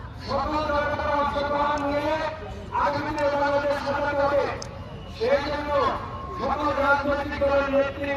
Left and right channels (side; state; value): both; identical; correlation 1.00